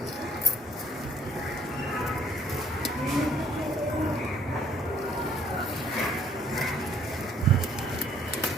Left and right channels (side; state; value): both; normal; correlation 0.61